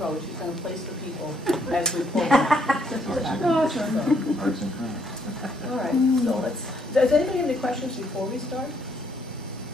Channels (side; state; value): both; normal; correlation 0.70